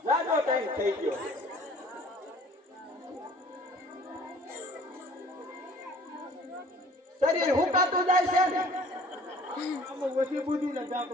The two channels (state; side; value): normal; both; correlation 0.51